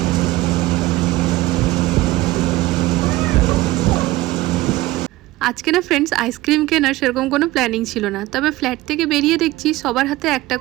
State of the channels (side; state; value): left; quieter; 17.8 dB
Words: আজকে না ফ্রেন্ডস আইসক্রিম কেনার সেরকম কোনো প্ল্যানিং ছিল না, তবে ফ্ল্যাট থেকে বেরিয়ে দেখছি সবার হাতে একটা